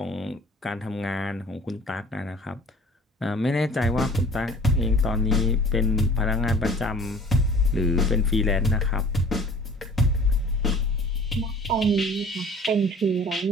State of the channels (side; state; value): both; normal; correlation 0.47